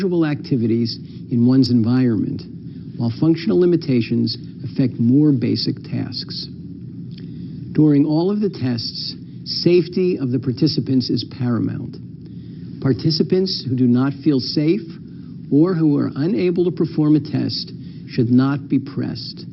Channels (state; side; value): identical; both; correlation 1.00